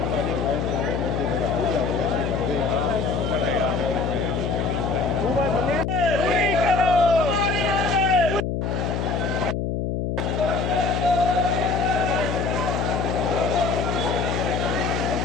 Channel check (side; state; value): left; noise; hum, 1 dB below the sound